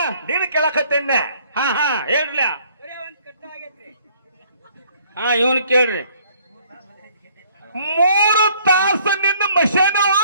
ನೀನು ಕೇಳಕತ್ತೇನೆ. ಹೇಳ್ರಿ. ಇವನ್ ಕೇಳ್ರಿ. 3 ತಾಸು ನಿನ್ನ ಮಷೇನು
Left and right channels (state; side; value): inverted; both; correlation -0.61